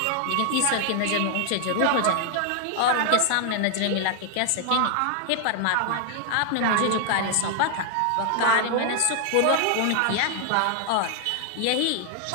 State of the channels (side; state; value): both; different; correlation 0.00